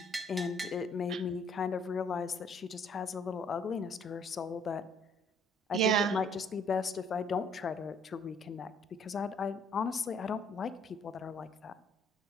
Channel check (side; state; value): both; normal; correlation 0.62